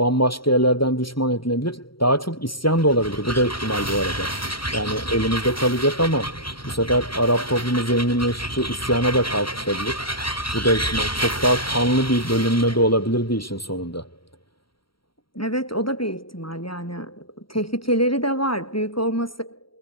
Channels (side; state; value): right; late; 0.74 ms